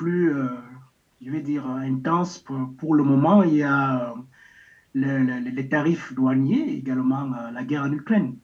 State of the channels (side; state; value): both; identical; correlation 1.00